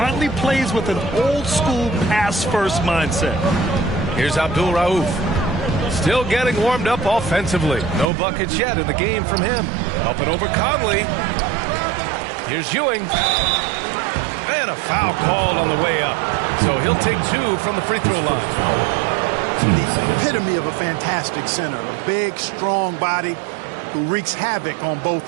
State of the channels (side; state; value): left; drops out; at 8.1 s